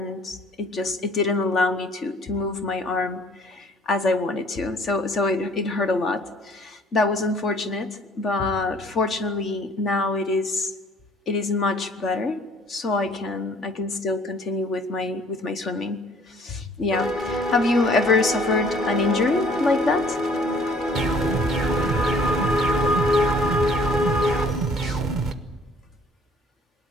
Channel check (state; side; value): normal; both; correlation 0.57